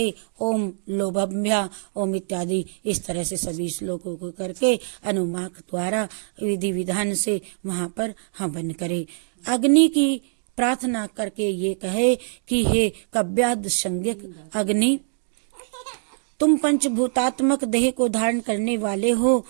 ओम लोभभ्या ओम इत्यादि इस तरह से सभी श्लोकों को करके अनुमाक द्वारा विधि विधान से वहां पर हवन करे। अग्नि की प्रार्थना करके ये कहे कि हे कव्याद संज्ञक अग्नि, तुम पंचभूतात्मक देह को धारण करने वाले हो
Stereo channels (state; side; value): silent; left; digital silence